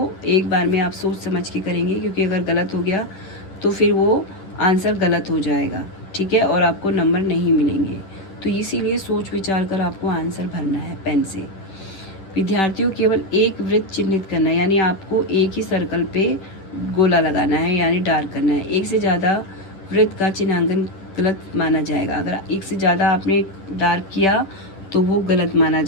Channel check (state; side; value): late; right; 10 ms